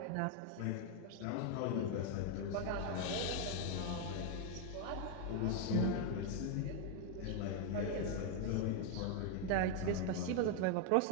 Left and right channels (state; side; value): different; both; correlation 0.01